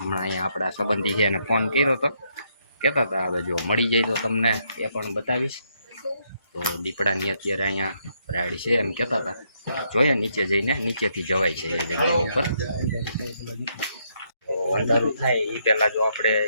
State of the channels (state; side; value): inverted; both; correlation -0.75